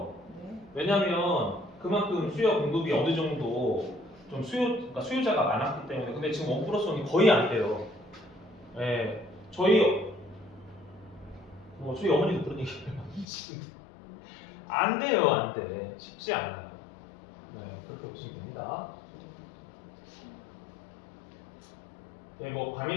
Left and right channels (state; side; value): drops out; right; at 13.2 s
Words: 네. 왜냐하면 그만큼 수요 공급이 어느 정도 좀 그러니까 수요자가 많았기 때문에. 근데 지금 1+1이 거의 안 돼요. 예, 저희 어머니도 그런 얘기해요. 안 돼요, 안 돼. 쉽지 않아요. 네, 그렇게 보시면 됩니다. 네, 뭐